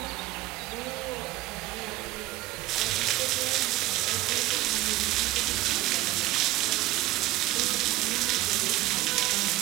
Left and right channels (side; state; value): left; quieter; 17.2 dB